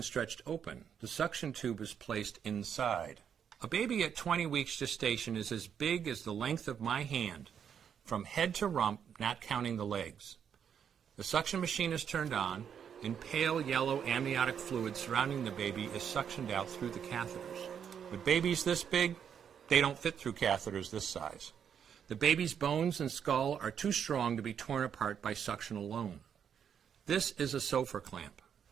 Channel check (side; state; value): left; quieter; 8.0 dB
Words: stretched open, the suction tube is placed inside. A baby at 20 weeks gestation is as big as the length of my hand, from head to rump, not counting the legs. The suction machine is turned on, and pale yellow amniotic fluid surrounding the baby is suctioned out through the catheters. With babies this big, they don't fit through catheters this size. The baby's bones and skull are too strong to be torn apart by suction alone. This is a Sofer clamp.